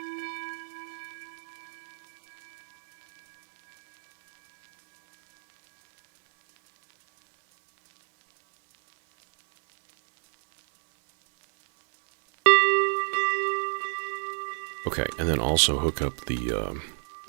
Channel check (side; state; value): left; silent; 60 dB below the other